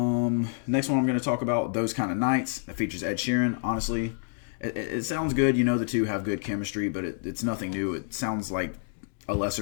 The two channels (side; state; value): right; silent; digital silence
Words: Next one I'm going to talk about, Those Kind of Nights. That features Ed Sheeran. Honestly, it sounds good. You know the two have good chemistry, but it's nothing new. It sounds like a